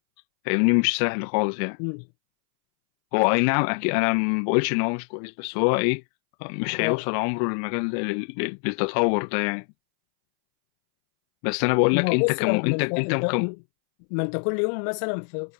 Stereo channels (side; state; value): right; silent; 63 dB below the other